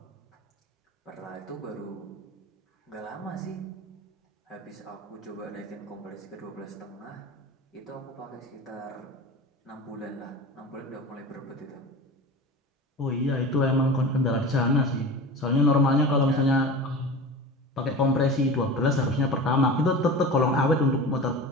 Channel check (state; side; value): normal; both; correlation 0.33